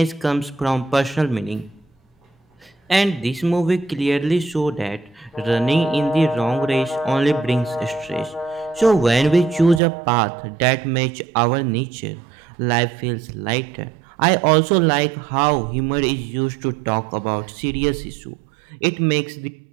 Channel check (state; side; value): drops out; left; at 9.8 s